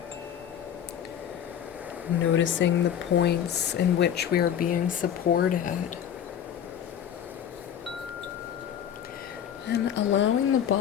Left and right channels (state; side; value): quieter; right; 9.4 dB